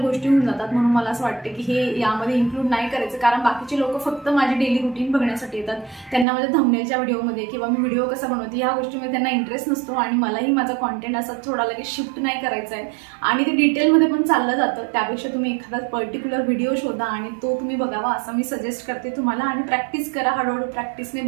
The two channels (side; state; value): left; drops out; at 6.2 s